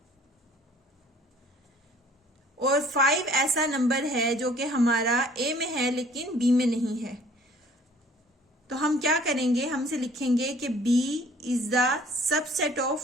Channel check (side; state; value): both; normal; correlation 0.54